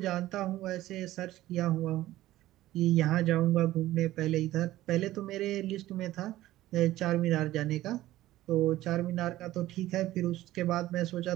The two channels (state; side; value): quieter; left; 15.5 dB